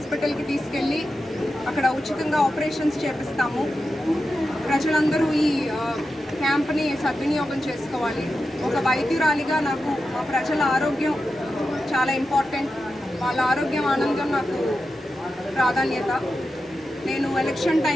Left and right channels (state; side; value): normal; both; correlation 0.90